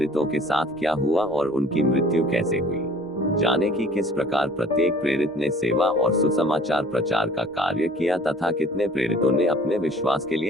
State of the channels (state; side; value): normal; both; correlation 0.52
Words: के साथ क्या हुआ और उनकी मृत्यु कैसे हुई, जाने कि किस प्रकार प्रत्येक प्रेरित ने सेवा और सुसमाचार प्रचार का कार्य किया तथा कितने प्रेरितों ने अपने विश्वास के